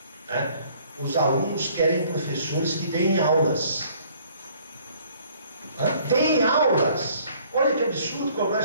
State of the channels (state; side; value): inverted; both; correlation -0.59